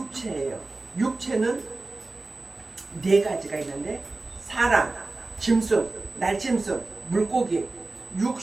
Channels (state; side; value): quieter; left; 3.3 dB